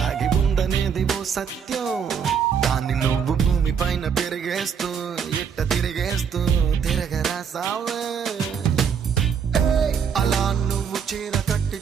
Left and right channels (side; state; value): left; quieter; 7.1 dB